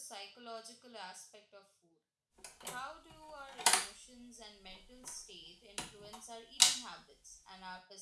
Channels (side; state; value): both; identical; correlation 1.00